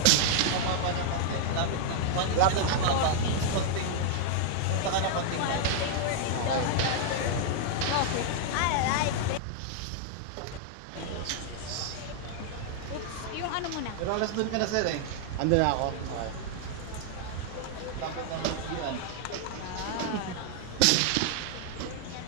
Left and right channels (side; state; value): both; different; correlation -0.01